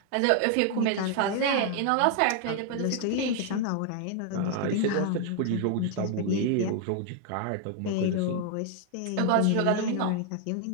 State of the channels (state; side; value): different; both; correlation 0.00